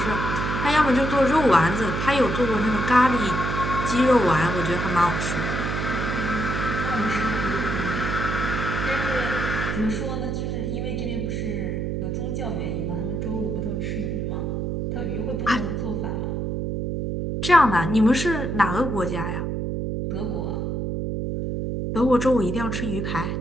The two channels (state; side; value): noise; right; hum, 2 dB below the sound